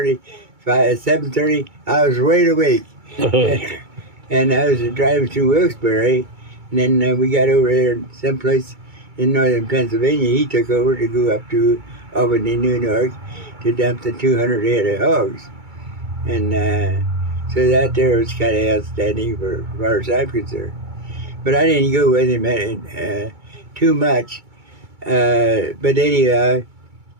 7:30, I was wide awake. And I was driving through Wilkes-Barre, and then we got over there someplace in northern Pennsylvania. He took over to go up to Albany, New York, to dump the 200 head of hogs. And so that there was kind of outstanding for as far as I'm concerned. But I didn't go with him too much. But anyhow,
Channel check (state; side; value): late; left; 2.3 ms